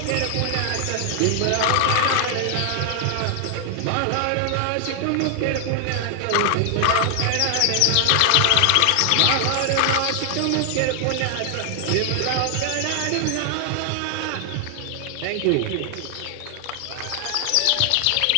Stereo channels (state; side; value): different; both; correlation 0.00